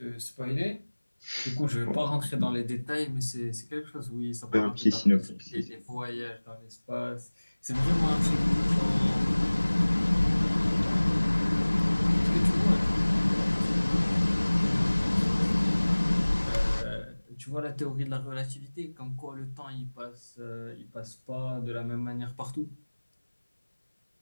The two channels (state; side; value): inverted; both; correlation -1.00